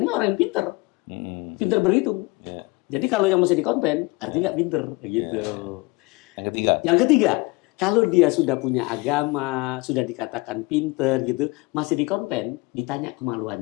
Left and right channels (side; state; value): right; quieter; 24.4 dB